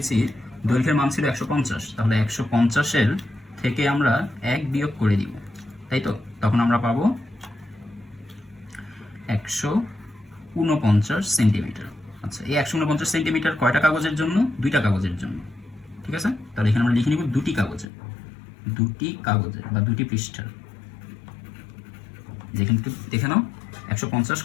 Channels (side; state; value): right; drops out; at 17.9 s